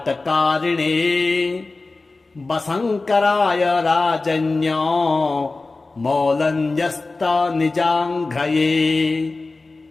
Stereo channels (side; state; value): right; quieter; 3.5 dB